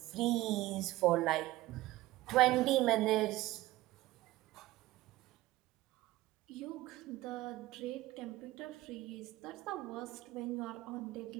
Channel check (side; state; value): left; quieter; 17.5 dB